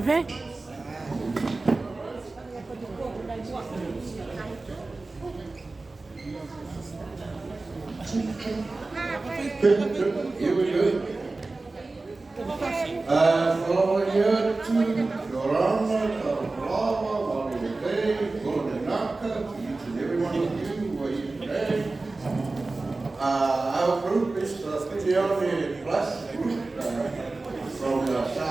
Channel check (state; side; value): quieter; left; 3.4 dB